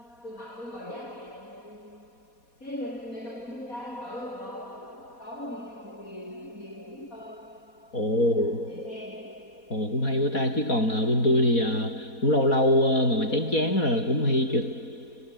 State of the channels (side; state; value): right; late; 4.2 ms